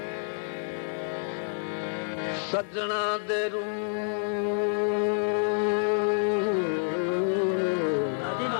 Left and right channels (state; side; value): silent; right; 59 dB below the other